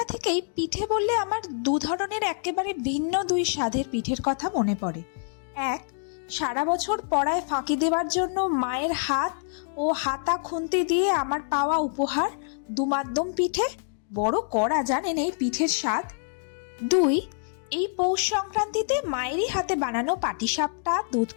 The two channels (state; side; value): silent; right; digital silence